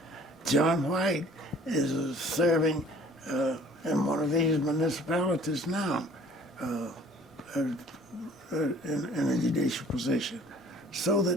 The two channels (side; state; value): both; normal; correlation 0.52